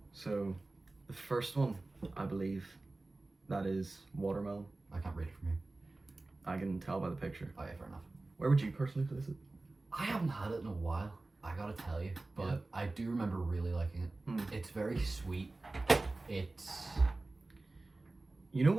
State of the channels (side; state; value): left; quieter; 3.1 dB